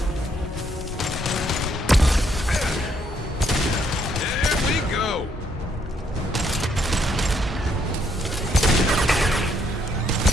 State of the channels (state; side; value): normal; both; correlation 0.71